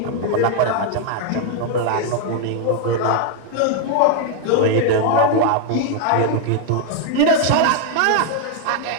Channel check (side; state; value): both; different; correlation 0.00